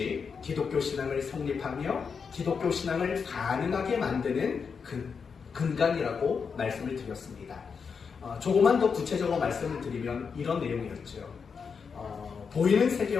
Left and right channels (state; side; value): quieter; right; 5.9 dB